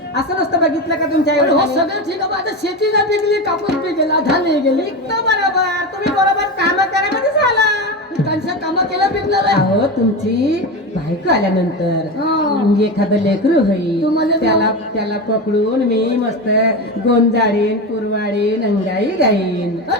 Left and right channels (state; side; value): normal; both; correlation 0.20